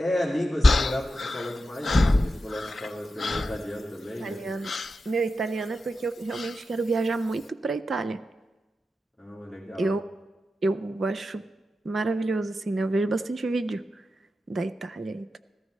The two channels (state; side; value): normal; both; correlation 0.90